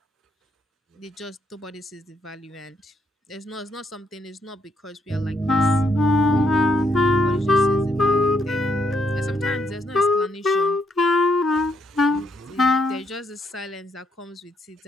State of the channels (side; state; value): both; normal; correlation 0.75